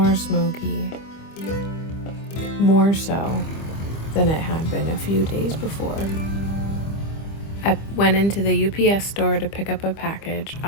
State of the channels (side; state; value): right; late; 25 ms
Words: smoky, more so than it had been a few days before. I went into the UPS store to pick up a package